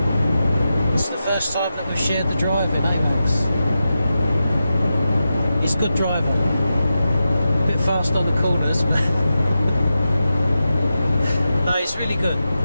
It's the first time that we've shared the driving, eh, Max? He's a good driver. A bit fast on the corners, but no, he's really good.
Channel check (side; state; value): both; inverted; correlation -0.91